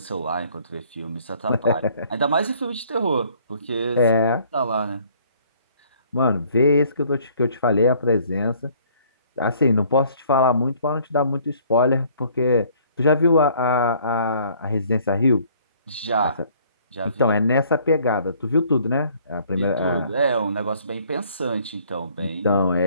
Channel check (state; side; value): inverted; both; correlation -0.59